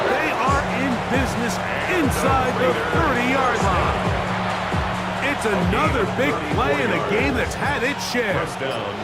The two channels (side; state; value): both; identical; correlation 1.00